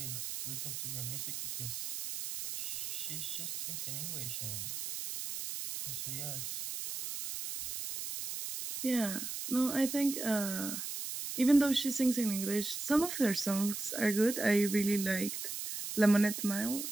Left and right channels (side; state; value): right; noise; hiss, 5 dB below the sound